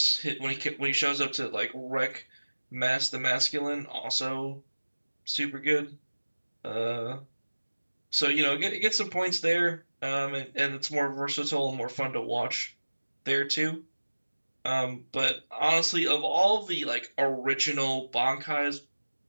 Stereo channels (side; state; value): both; inverted; correlation -1.00